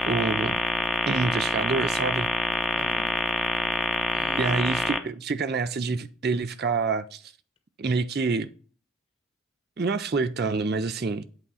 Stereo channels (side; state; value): both; normal; correlation 0.63